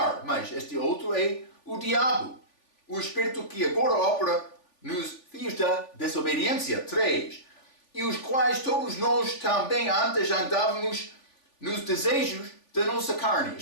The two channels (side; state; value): right; late; 3.4 ms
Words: mas este outro é o diabo, o espírito que agora opera nos filhos da desobediência. 3. E os quais todos nós também antes andávamos nos desejos da nossa carne.